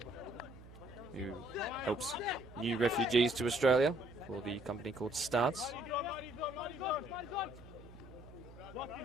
who helps new refugees to Australia for the company called Starts.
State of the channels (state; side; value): noise; right; hum, 18 dB below the sound